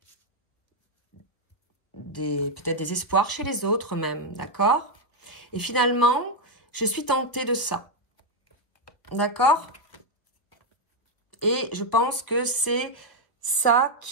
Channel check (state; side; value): late; right; 1.2 ms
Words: peut-être des espoirs chez les autres même, d'accord? Et finalement, je suis tentée de ça, d'accord? Et je pense que c'est ça